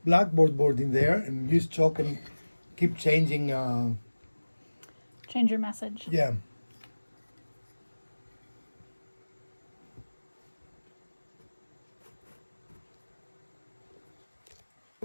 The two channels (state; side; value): inverted; both; correlation -1.00